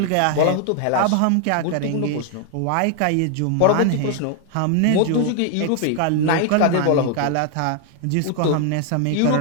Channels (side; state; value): both; different; correlation 0.00